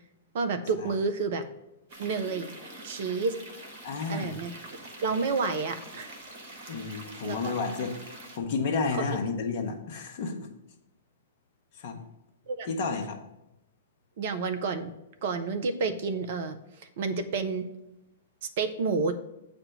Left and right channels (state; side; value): inverted; both; correlation -0.32